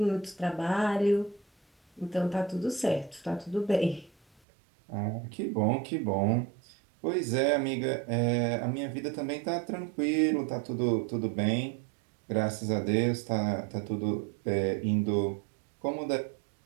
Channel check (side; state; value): left; drops out; at 4.4 s